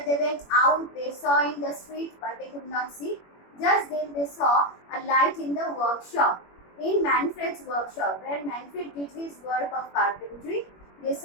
They went out. They saw in the street, but they could not see. Just then they saw a light in the workshop. In Manfred's workshop, where Manfred did his work of carpentry, they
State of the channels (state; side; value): late; right; 21 ms